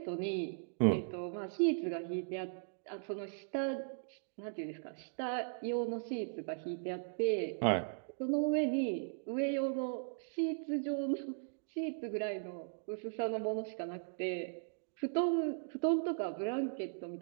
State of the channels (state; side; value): silent; left; digital silence